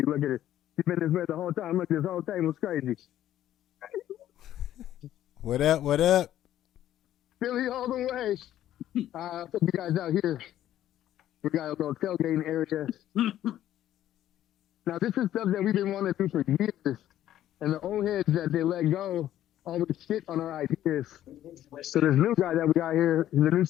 Look at it. She's been this way the whole time. Look, this whole table's crazy. What up? What up? Philly all the way. Put you guys out here. We got a little tailgating area. Now, this is stuff that we've been wanting to do for years. And the old heads that they let go always shit on our ideas. So this new guy that we got here, the new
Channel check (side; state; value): right; quieter; 12.4 dB